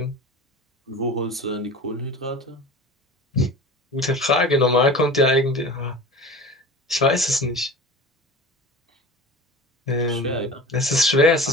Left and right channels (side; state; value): both; normal; correlation 0.36